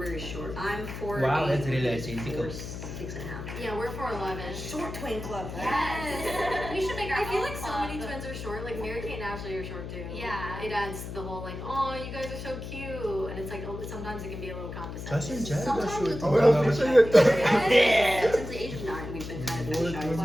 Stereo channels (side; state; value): left; noise; hum, 8 dB below the sound